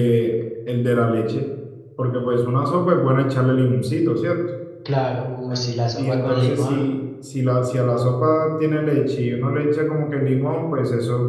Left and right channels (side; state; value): both; identical; correlation 1.00